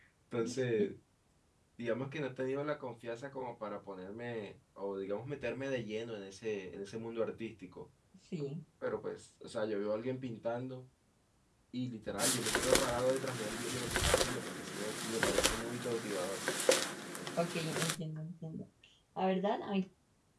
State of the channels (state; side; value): identical; both; correlation 1.00